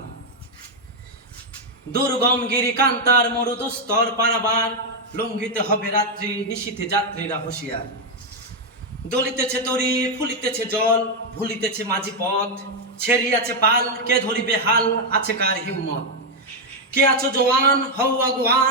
দুর্গম গিরি কান্তার মরুদুস্তর পারাবার, লঙ্ঘিতে হবে রাত্রি নিশীথে যাত্রীরা হুঁশিয়ার। দলিতেছে তরি ফুলিতেছে জল, ভুলিতেছে মাঝি পথ, ছেড়িয়াছে পাল কে ধরিবে হাল, আছে কার হিম্মত। কে আছো জওয়ান হও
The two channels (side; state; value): both; normal; correlation 0.02